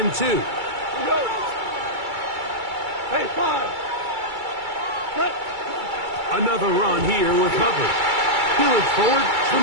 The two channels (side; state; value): left; late; 2.3 ms